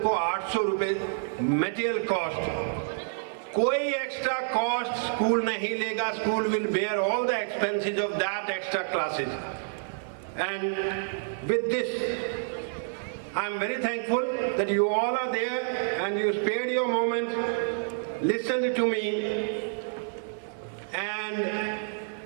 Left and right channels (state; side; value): silent; left; 59 dB below the other